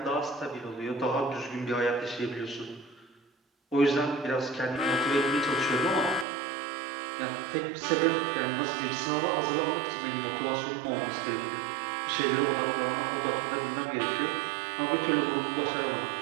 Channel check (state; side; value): drops out; left; at 6.2 s